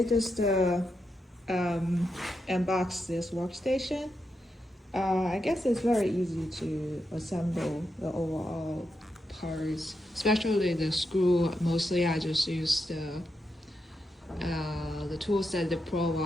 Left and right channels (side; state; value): both; normal; correlation 0.85